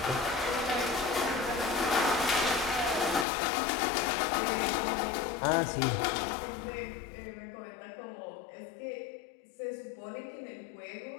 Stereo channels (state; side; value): drops out; right; at 3.2 s